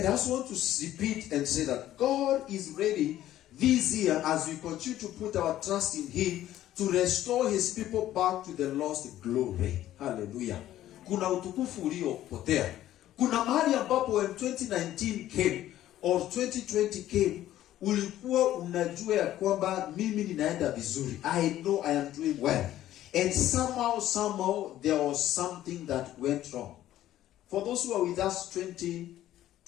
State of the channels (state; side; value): quieter; right; 13.2 dB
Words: I also want to repeat and say that God is ready this year, as we continue to put our trust in him, to restore his people back to the lost glory. Hallelujah. Kuna utukufu uliopotea. Kuna mahali ambapo when 2019 came or 2020 came, ulikuwa unajua ya kwamba mimi ninaenda vizuri. I know I am doing well. And somehow there was something that went wrong. For those who are with us